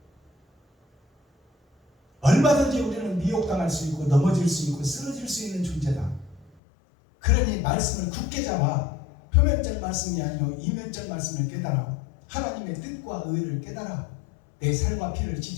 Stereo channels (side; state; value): right; drops out; at 6.5 s